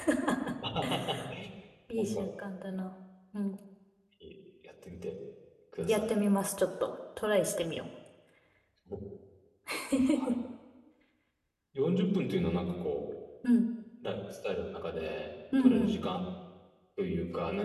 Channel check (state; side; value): identical; both; correlation 1.00